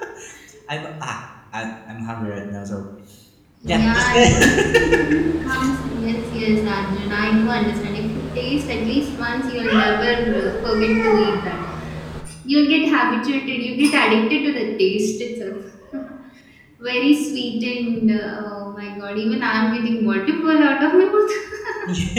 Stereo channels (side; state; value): both; identical; correlation 1.00